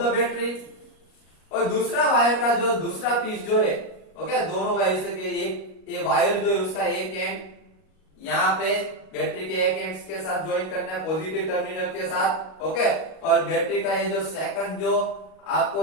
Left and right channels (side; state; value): right; late; 38 ms